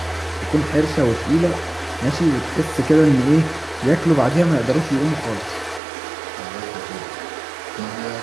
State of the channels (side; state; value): left; drops out; at 5.8 s